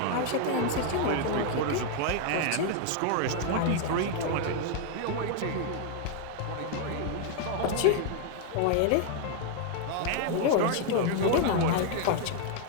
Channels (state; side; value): different; both; correlation 0.00